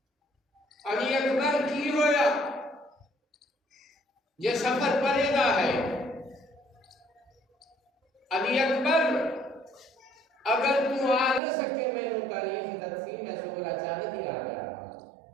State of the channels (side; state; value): left; drops out; at 11.4 s